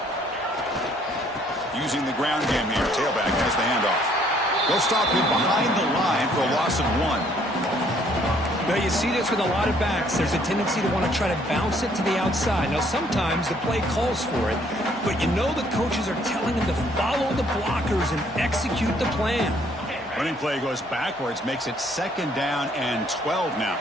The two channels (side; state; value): both; normal; correlation 0.64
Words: Using the ground game here. Tailback has the handoff. They'll stop him behind the line for a loss of 1. Now you see this with a lot of backs. There's a tendency to want to try to bounce it to the outside. Now sometimes the play calls for it, but you know the coaches are telling them to follow the blockers and execute the plan. Running play goes backwards, makes it second down and 12 now.